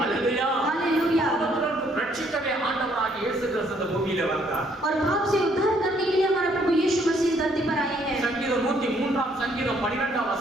हालेलुया. हालेलुया। பாவத்திலிருந்து ரட்சிக்கவே ஆண்டவராகிய இயேசு கிறிஸ்து இந்த பூமியில வந்தார். और पाप से उद्धार करने के लिए हमारा प्रभु यीशु मसीह धरती पर आए हैं। சங்கீதம் 103 சங்கீதம் 12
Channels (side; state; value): both; normal; correlation 0.67